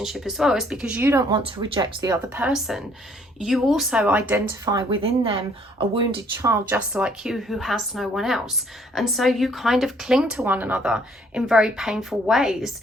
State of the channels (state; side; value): normal; both; correlation 0.63